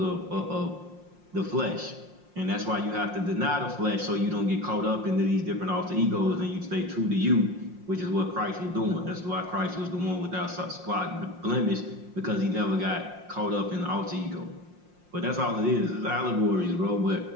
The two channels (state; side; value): late; left; 5.6 ms